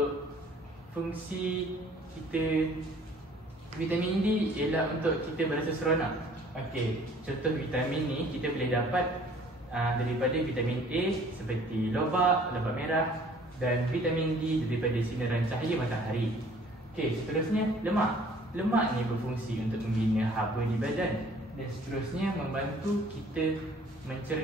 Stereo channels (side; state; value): both; normal; correlation 0.55